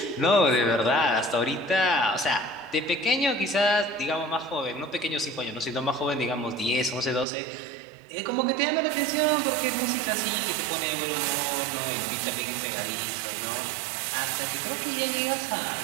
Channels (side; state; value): left; drops out; at 7.2 s